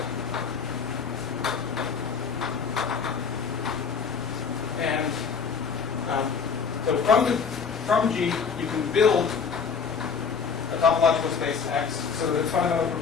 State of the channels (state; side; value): quieter; right; 5.9 dB